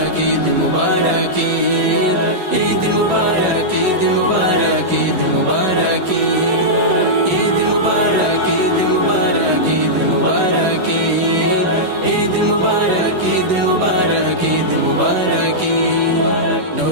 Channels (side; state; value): left; late; 11 ms